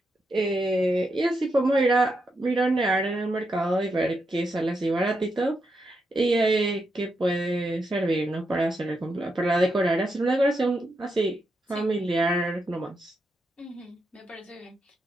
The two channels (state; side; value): normal; both; correlation 0.83